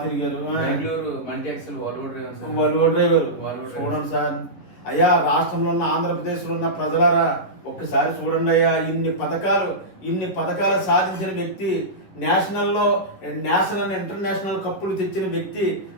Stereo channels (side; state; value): right; late; 11 ms